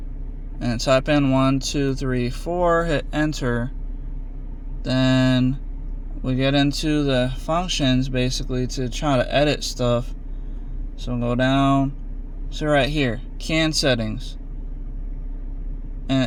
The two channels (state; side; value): identical; both; correlation 1.00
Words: and type in 1, 2, 3, 4, hit enter, then we get into the functions basically to try to edit stuff. So go down So right here, CAN settings. And